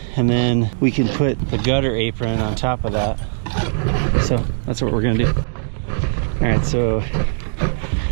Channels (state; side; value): silent; left; digital silence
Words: and then we can put the gutter apron on top of that. So that's what we're gonna do. All right, so